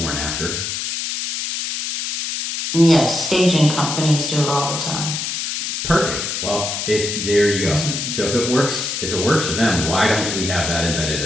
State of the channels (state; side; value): noise; left; hiss, 3 dB below the sound